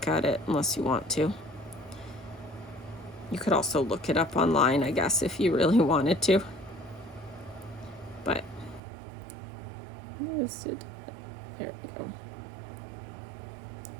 at it unless you want to. You could also look it up online, I guess, if you really wanted to. But there we go.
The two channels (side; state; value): left; drops out; at 8.8 s